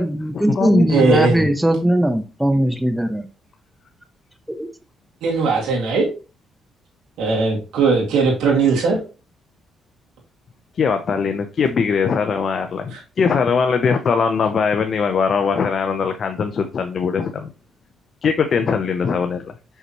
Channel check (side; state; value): both; normal; correlation 0.75